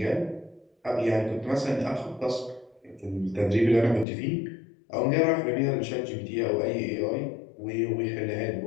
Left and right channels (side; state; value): right; drops out; at 4.0 s